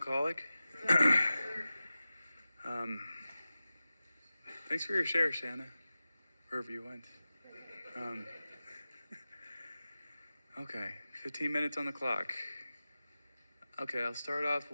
Thanks for your share, Shanna, wherever you went. Okay, 15 minutes on the clock. Okay, I'll start off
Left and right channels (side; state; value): both; inverted; correlation -0.96